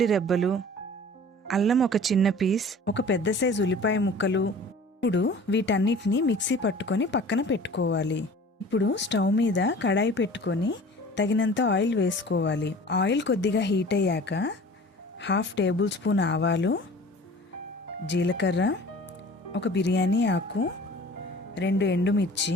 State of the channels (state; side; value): normal; both; correlation 0.44